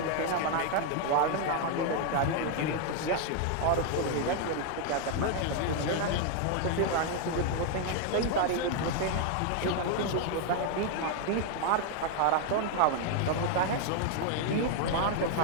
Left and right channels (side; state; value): both; different; correlation 0.00